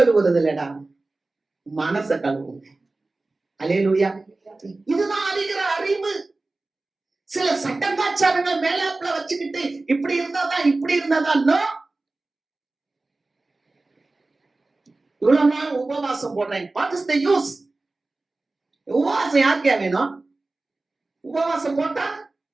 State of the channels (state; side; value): quieter; left; 3.2 dB